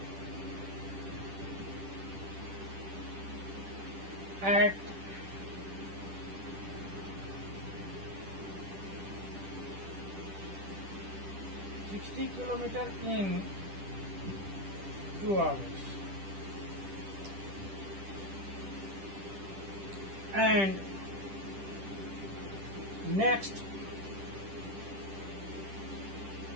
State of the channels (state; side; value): late; left; 10 ms